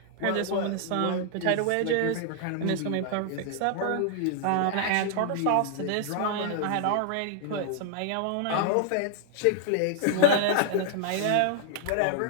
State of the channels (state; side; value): different; both; correlation -0.01